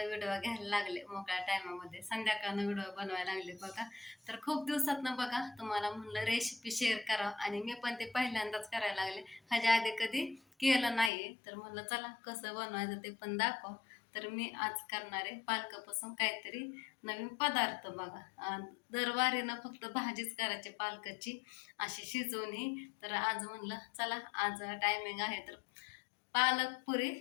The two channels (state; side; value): drops out; right; at 11.1 s